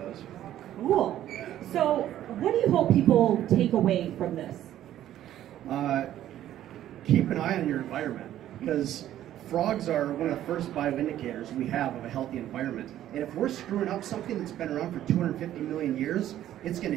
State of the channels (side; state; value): left; quieter; 12.3 dB